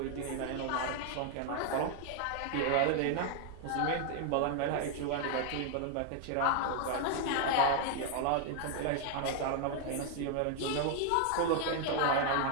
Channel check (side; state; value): both; different; correlation 0.00